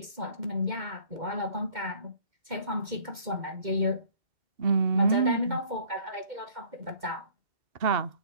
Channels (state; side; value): late; left; 2.1 ms